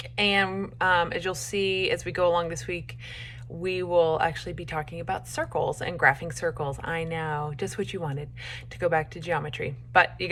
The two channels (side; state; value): both; identical; correlation 1.00